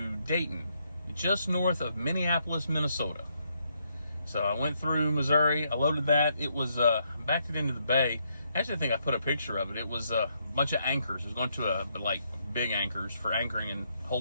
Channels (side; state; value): both; inverted; correlation -0.76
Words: Dayton, just north of Minneapolis, Minnesota. So I went through Missouri, I loaded that. It was backed it into the bay. Actually, I think I put a picture of it. It was a bunch of anchors. It was going to like big anchors for anchoring and